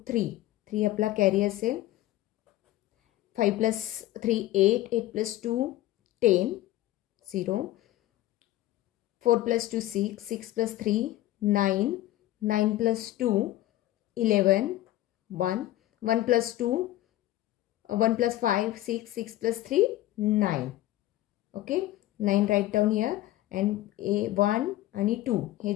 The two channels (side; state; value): right; quieter; 15.3 dB